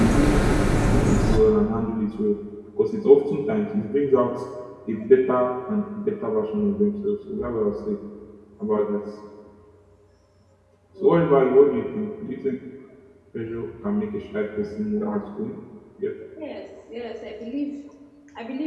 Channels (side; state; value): both; identical; correlation 1.00